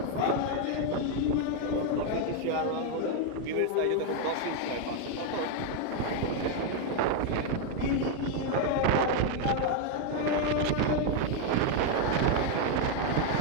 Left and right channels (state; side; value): different; both; correlation 0.01